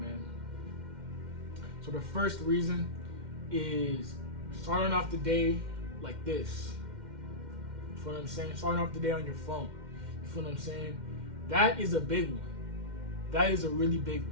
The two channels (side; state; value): left; late; 2.1 ms